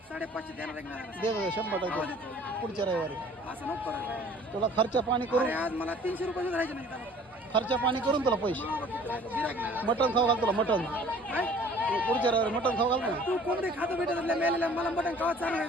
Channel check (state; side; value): normal; both; correlation 0.51